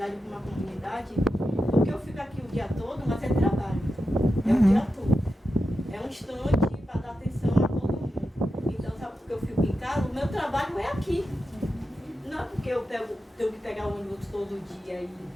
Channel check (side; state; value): both; normal; correlation 0.90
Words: como a comunidade, porque eu fico aqui o dia todo, mas é trabalho. É o dia todo. É um instante para dar atenção a todo mundo. Então, sabe por que eu fico em casa? O meu trabalho é aqui. Não é porque eu tenho que pegar o ônibus todo dia e